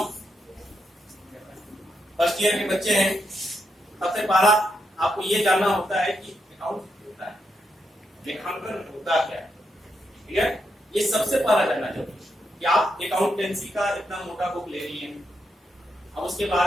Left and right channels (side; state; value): both; normal; correlation 0.82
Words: First year के बच्चे हैं, सबसे पहला आपको ये जानना होता है कि अकाउंट होता है, लेखांकन होता क्या है, ठीक है। ये सबसे पहला जानना जरूरी है कि आप अकाउंटेंसी का इतना मोटा बुक ले रही हैं, अब उसके